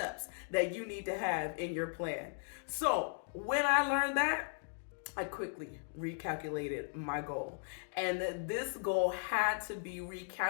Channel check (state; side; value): silent; right; digital silence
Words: that you need to have in your plan." So when I learned that, I quickly recalculated my goal. And this goal had to be